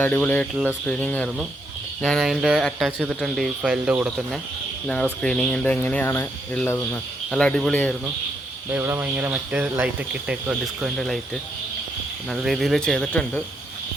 അടിപൊളിയായിട്ടുള്ള സ്ക്രീനിങ് ആയിരുന്നു. ഞാൻ അതിൻ്റെ അറ്റാച്ച് ചെയ്തിട്ടുണ്ട് ഈ ഫയലിൻ്റെ കൂടെ തന്നെ ഞങ്ങളുടെ സ്ക്രീനിങ്ങിൻ്റെ എങ്ങനെയാണ് ഉള്ളതെന്ന്. നല്ല അടിപൊളിയായിരുന്നു. ഇവിടെ ഭയങ്കര മറ്റേ ലൈറ്റൊക്കെ ഇട്ടേക്കുക, ഡിസ്കോൻ്റെ ലൈറ്റ് നല്ല രീതിയിൽ ചെയ്തിട്ടുണ്ട്.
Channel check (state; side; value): normal; both; correlation 0.77